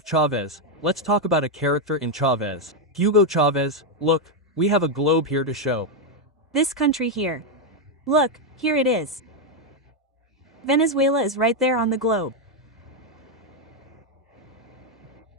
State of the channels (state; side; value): normal; both; correlation 0.03